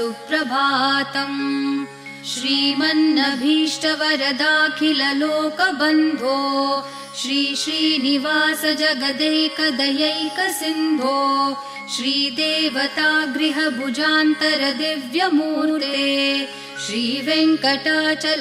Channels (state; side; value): identical; both; correlation 1.00